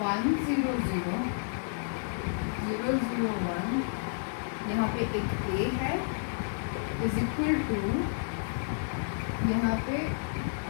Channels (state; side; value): silent; right; digital silence